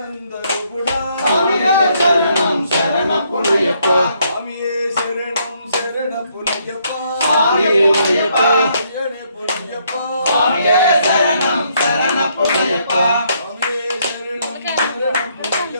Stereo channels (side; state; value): both; inverted; correlation -0.71